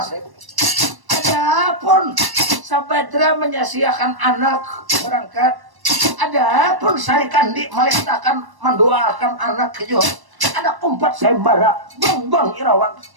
Adapun Sabadra menyasiakan anak berangkat. Adapun Sari Kandi melestakan mendoakan anak kejo. Ada umpat sembara bang Irawan.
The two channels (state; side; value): late; left; 1.1 ms